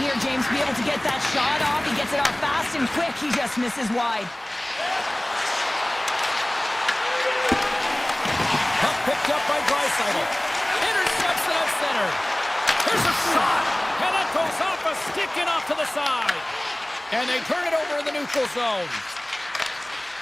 here, James, to be able to get that shot off. He gets it off fast and quick. He just misses wide. Puck picked up by Draisaitl. Intercepts it at center. Here's a shot. And that goes off a stick and off to the side. And they turn it over in the neutral zone.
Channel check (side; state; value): right; noise; hum, 29 dB below the sound